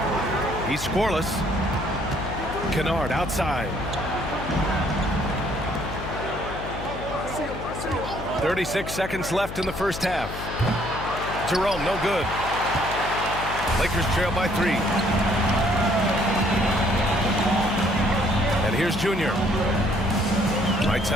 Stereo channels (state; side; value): noise; left; hum, 9 dB below the sound